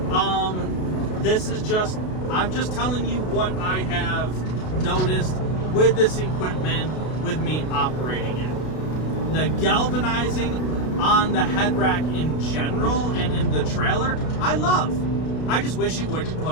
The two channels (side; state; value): right; late; 33 ms